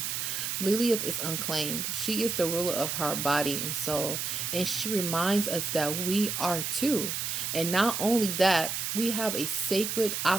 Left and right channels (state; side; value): noise; right; hiss, 2 dB below the sound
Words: Lilith is unclaimed. She is the ruler of her body and soul, and she reminds us that we are too. And not only that, We have a sacred